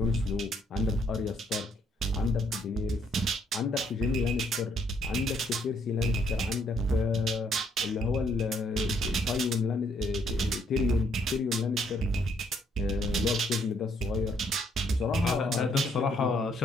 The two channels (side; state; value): both; normal; correlation 0.69